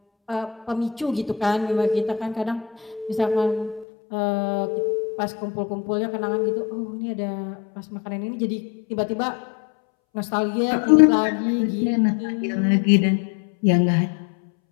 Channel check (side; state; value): right; drops out; at 3.9 s